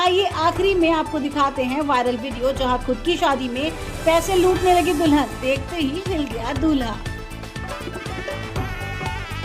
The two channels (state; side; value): identical; both; correlation 1.00